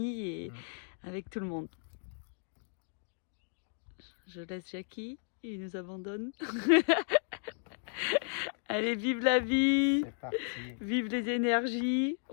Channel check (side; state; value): right; silent; digital silence